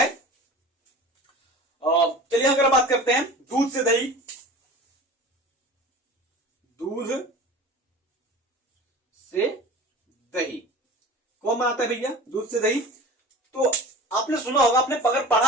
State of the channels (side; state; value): both; normal; correlation 0.38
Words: चलिए अगर बात करते हैं दूध से दही, कौन बनाता है भैया? दूध से दही। तो आपने सुना होगा, आपने अगर पढ़ा